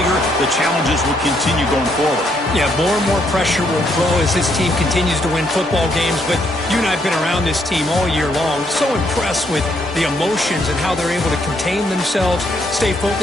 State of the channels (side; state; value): both; normal; correlation 0.73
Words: The challenges will continue going forward. Yeah, more and more pressure will grow as this team continues to win football games. But you and I have been around this team all year long. So impressed with the emotions and how they're able to contain themselves, stay